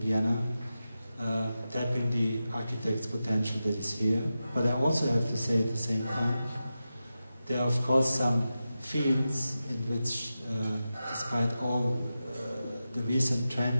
tapping the architect's potential that is here. But I also have to say at the same time, there are of course some fields in which, despite all the recent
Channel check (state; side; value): inverted; both; correlation -0.92